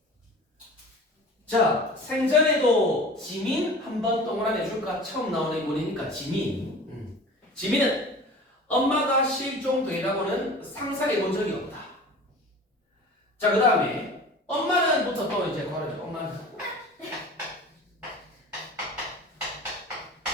자, 생전에도 지민 한번 동그라미 해줄까? 처음 나오는 인물이니까 지민. 지민은 엄마가 실종되라고는 상상해 본 적이 없다. 자, 그 다음에 엄마는부터 또 이제 걸어줘.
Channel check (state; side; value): normal; both; correlation 0.39